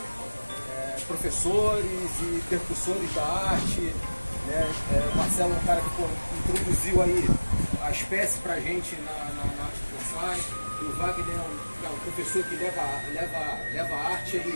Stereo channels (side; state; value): both; inverted; correlation -1.00